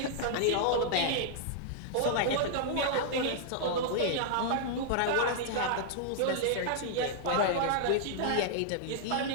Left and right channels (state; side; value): different; both; correlation -0.01